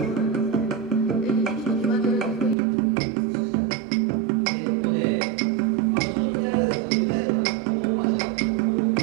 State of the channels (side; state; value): left; drops out; at 2.6 s